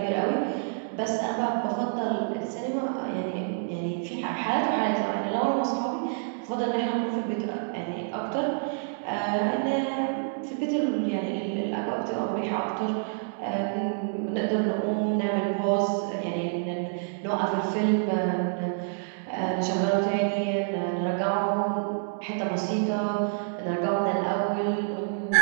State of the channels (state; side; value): silent; left; digital silence